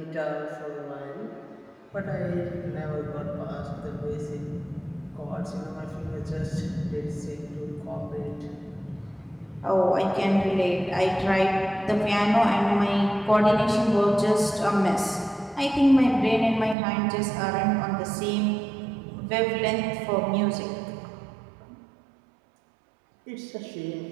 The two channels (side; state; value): left; drops out; at 16.8 s